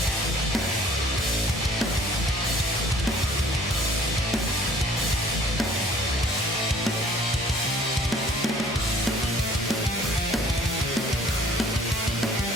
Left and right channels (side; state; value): both; normal; correlation 0.54